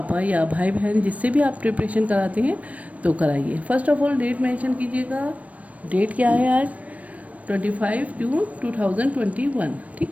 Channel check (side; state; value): left; late; 0.067 ms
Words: या भाई बहन जिससे भी आप प्रिपरेशन कराते हैं तो कराइए। First of all date mention कीजिएगा। डेट क्या है आज? 25 जून 2021।